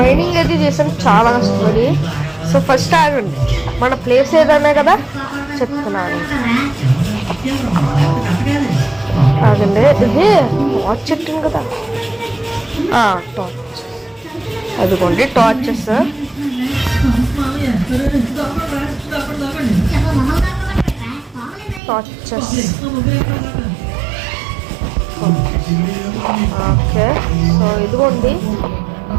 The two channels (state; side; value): drops out; left; at 21.8 s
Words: అయితే చేసాను చాలా కష్టపడి. సో ఫస్ట్ ఆగండి, మన ప్లేస్ ఏదన్నా కదా చెప్తున్నాను. ఆగండి, ఇది టార్చ్ చెట్టు కదా, టార్చ్. అదిగోండి టార్చెస్. ఓకే, సో ఇదిగోండి.